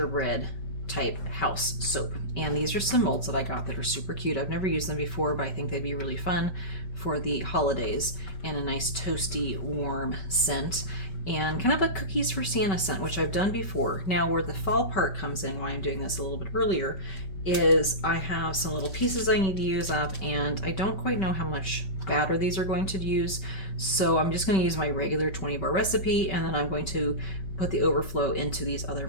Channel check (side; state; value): right; late; 5.2 ms